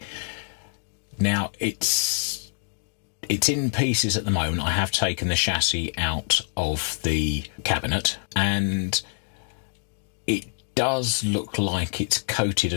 Now it's in pieces at the moment. I have taken the chassis out of the cabinet and it does look like it's coated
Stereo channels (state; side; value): silent; right; 61 dB below the other